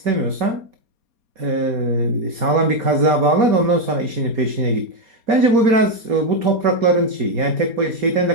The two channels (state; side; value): late; left; 4.2 ms